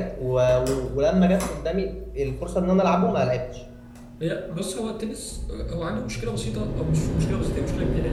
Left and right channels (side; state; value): both; identical; correlation 1.00